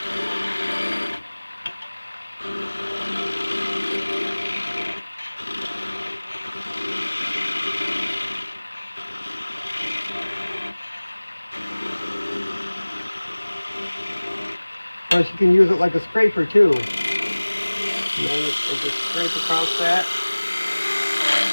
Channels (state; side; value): inverted; both; correlation -1.00